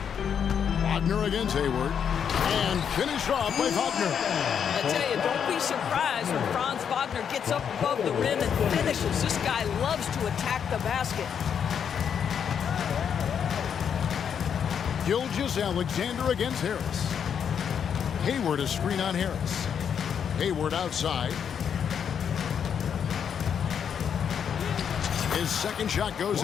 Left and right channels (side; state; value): right; quieter; 7.8 dB